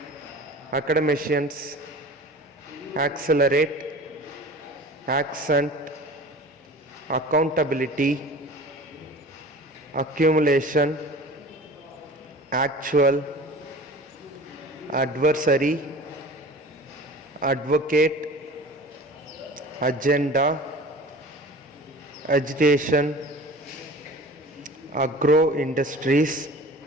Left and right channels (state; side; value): normal; both; correlation 0.40